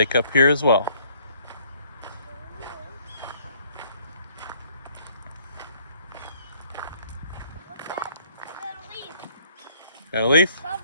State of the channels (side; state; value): both; inverted; correlation -0.62